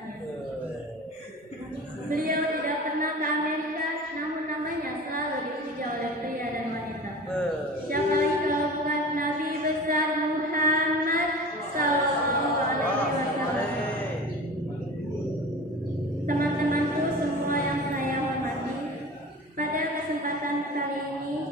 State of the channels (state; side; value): normal; both; correlation 0.36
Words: Beliau tidak pernah ke Amerika, namun namanya selalu dipuja oleh pria dan wanita. Siapa lagi kalau bukan Nabi besar Muhammad Sallallahu Alaihi Wasallam. Teman-temanku semua yang saya hormati, pada kesempatan kali ini